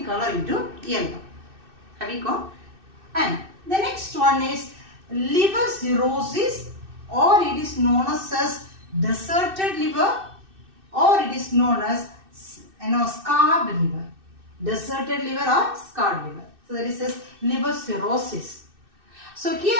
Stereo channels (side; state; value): left; late; 2.6 ms